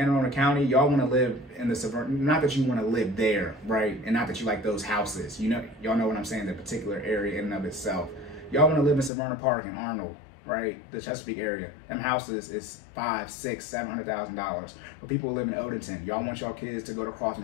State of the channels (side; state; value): right; drops out; at 9.1 s